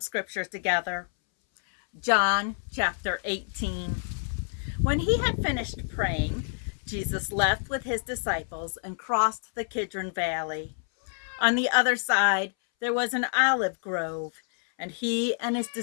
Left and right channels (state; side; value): silent; right; 59 dB below the other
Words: scripture together. John chapter 18. When he had finished praying, Jesus left with his disciples and crossed the Kidron Valley. On the other side, there was an olive grove, and he and his